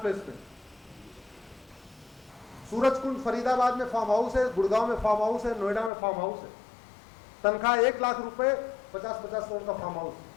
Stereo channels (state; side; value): drops out; right; at 5.9 s